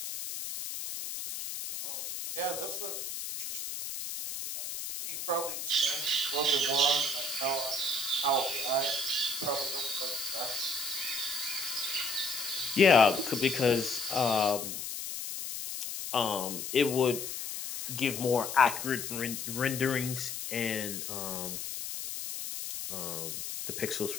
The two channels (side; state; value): left; noise; hiss, 6 dB below the sound